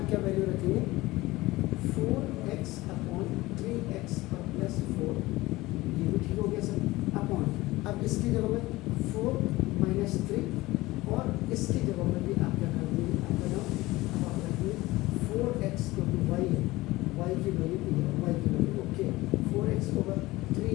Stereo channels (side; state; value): right; quieter; 19.3 dB